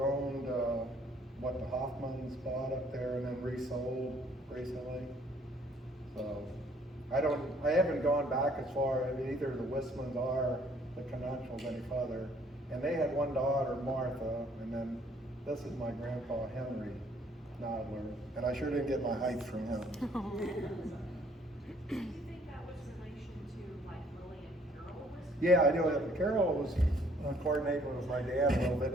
owned what the Hoffmans bought up there and then resold recently. So I haven't gone back as far as either the Wissmans or the Canachals any further. And they had one daughter, Martha, and then this is my grandpa, Henry Nadler. And I sure didn't get my height from him. Do you think that was relation to like Willie and Carol? Yeah, I do. Carol was coordinating with my dad a little bit,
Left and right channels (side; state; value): both; normal; correlation 0.62